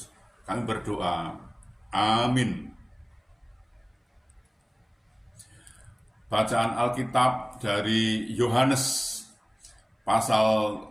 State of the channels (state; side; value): identical; both; correlation 1.00